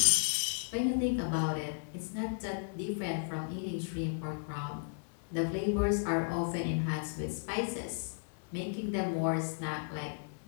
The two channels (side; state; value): right; silent; digital silence